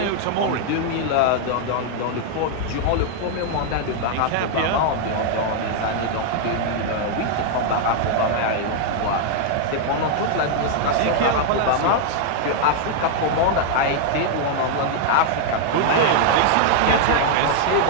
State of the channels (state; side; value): different; both; correlation 0.00